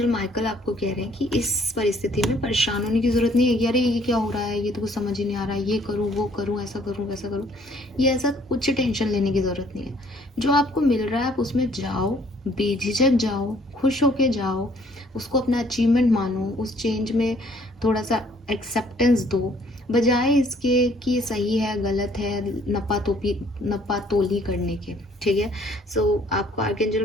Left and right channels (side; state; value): both; normal; correlation 0.61